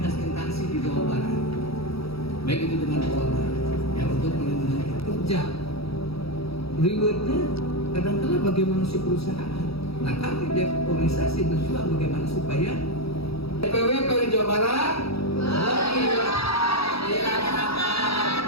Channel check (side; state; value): right; late; 0.77 ms